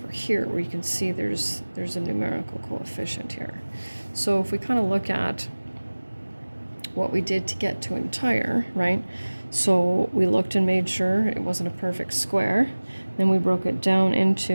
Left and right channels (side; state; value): both; inverted; correlation -1.00